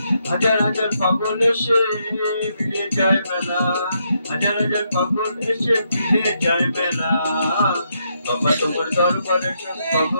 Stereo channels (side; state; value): both; inverted; correlation -0.78